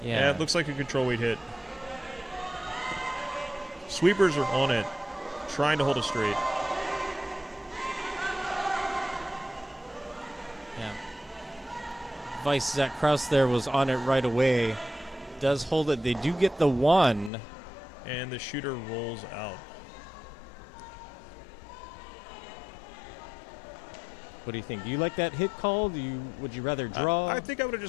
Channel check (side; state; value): right; drops out; at 17.3 s